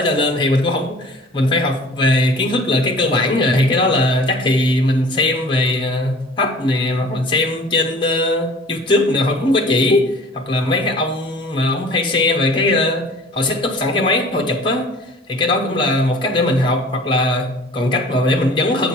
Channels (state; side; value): normal; both; correlation 0.47